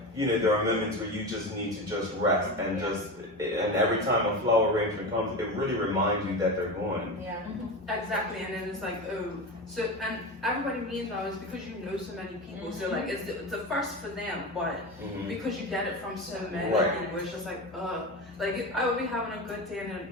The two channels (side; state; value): both; normal; correlation 0.23